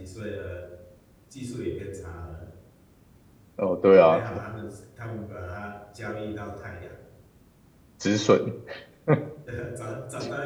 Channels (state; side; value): identical; both; correlation 1.00